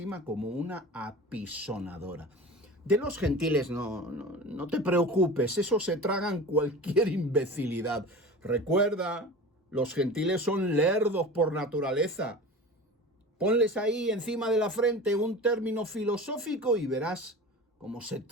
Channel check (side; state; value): both; normal; correlation 0.35